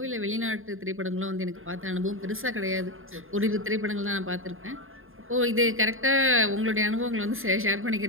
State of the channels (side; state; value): left; late; 0.60 ms